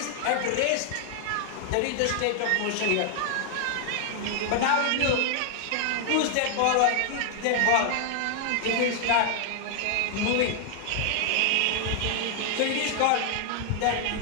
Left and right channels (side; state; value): both; different; correlation 0.00